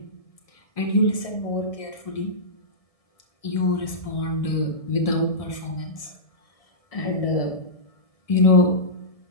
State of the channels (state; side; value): late; right; 1.7 ms